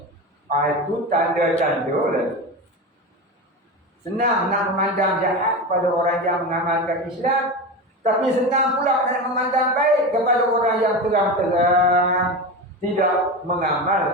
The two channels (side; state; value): both; normal; correlation 0.23